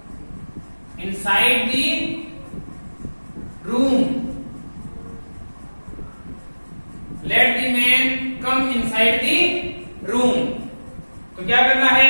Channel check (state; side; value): inverted; both; correlation -1.00